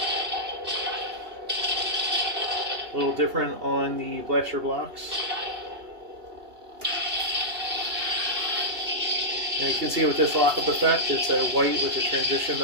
A little different on the blaster blocks. Now you can see with this Lockup effect, it's a white with a transition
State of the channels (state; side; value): late; left; 2.8 ms